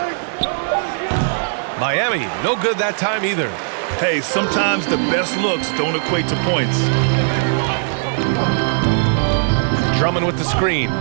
Miami, no good that time either. Hey, sometimes the best looks don't equate to points. Drummond with the screen.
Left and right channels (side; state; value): left; silent; 62 dB below the other